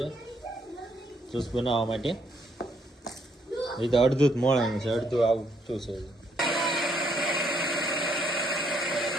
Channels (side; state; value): both; normal; correlation 0.72